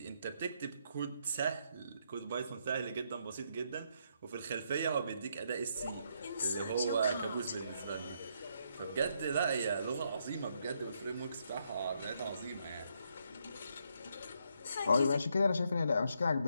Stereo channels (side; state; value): both; inverted; correlation -0.76